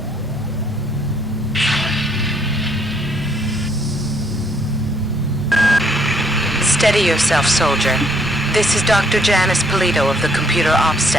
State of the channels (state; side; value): normal; both; correlation 0.67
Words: Steady yourself, soldier. This is Dr. Janice Polito of the computer ops